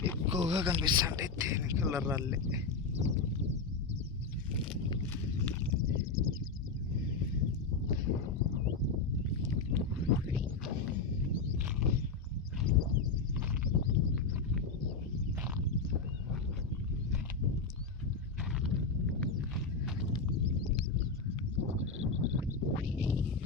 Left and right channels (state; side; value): quieter; right; 4.3 dB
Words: ఎక్కువగా కనిపిస్తుంటాయి. తేనె కలర్ రాళ్ళే.